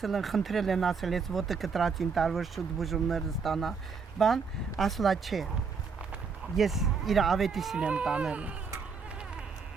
են, խնդրել են ասել, ես ոտը կտրածին տարվոր շուտ բուժումներ ստանա, բան, ասլա չէ, ես իր ավետիսին եմ տանելու։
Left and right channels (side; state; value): left; quieter; 5.3 dB